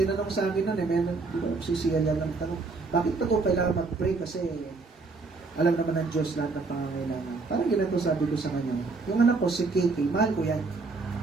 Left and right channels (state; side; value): quieter; left; 3.9 dB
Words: sa akin nun, sisiya lang ng tanong, bakit pa ito kailangan mag-pray? Kasi alam naman ng Diyos lahat ng pangangailangan. Parang ganito sabi ko sa kanya, yung anak ko, si KK, mahal ko yan.